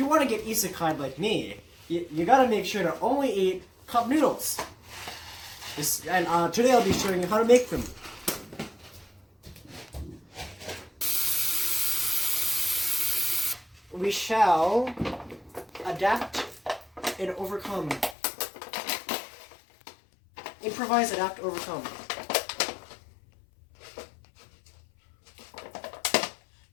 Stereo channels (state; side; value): drops out; right; at 18.2 s